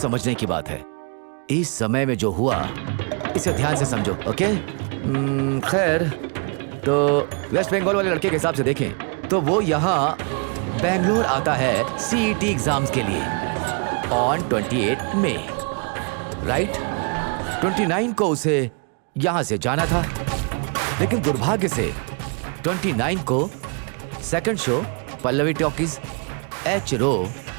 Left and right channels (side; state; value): left; quieter; 37.7 dB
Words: की बात है। इस समय में जो हुआ इसे ध्यान से समझो, ओके? खैर, तो वेस्ट बंगाल वाले लड़के के हिसाब से देखें तो वो यहाँ बेंगलोर आता है CET एग्जाम्स के लिए ऑन 28 मई, राइट? 29 को उसे यहाँ से जाना था, लेकिन दुर्भाग्य से 29 को second show Pallavi Talkies, H row